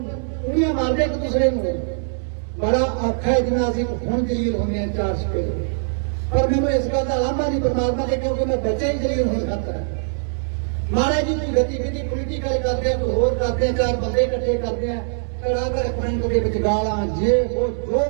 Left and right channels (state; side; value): silent; left; digital silence